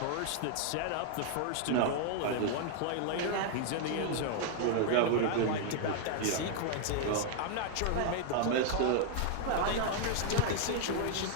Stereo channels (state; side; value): different; both; correlation 0.00